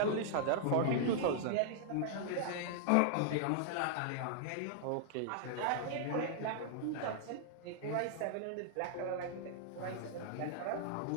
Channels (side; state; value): both; different; correlation -0.01